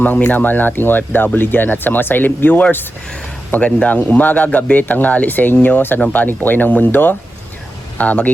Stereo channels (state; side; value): normal; both; correlation 0.91